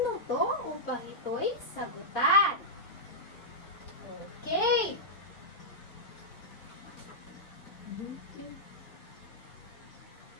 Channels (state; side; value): late; right; 4.3 ms